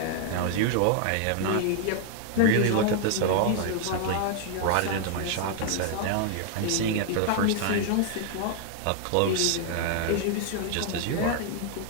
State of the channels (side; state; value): both; different; correlation 0.00